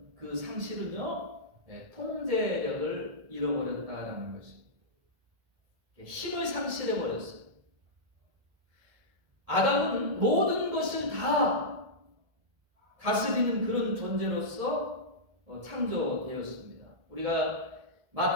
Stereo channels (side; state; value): left; late; 1.7 ms